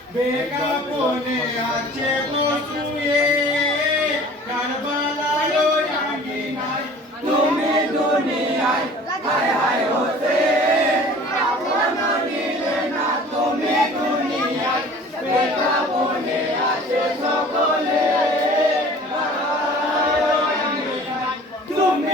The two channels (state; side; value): normal; both; correlation 0.46